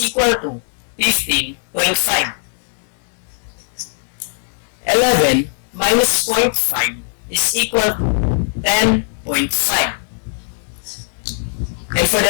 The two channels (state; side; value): silent; right; digital silence